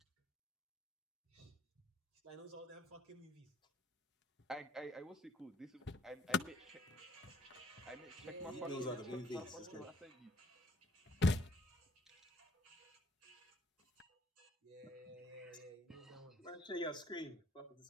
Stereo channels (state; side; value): normal; both; correlation 0.64